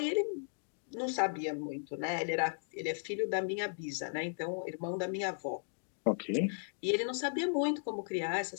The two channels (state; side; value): silent; right; digital silence